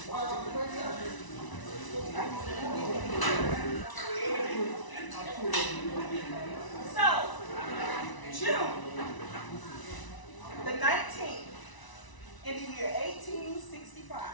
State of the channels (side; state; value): right; late; 1.0 ms